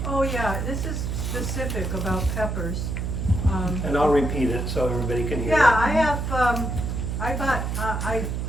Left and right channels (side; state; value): right; noise; hum, 2 dB below the sound